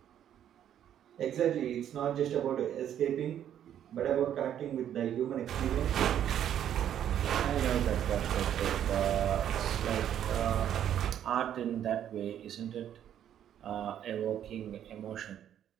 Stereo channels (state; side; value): quieter; left; 10.2 dB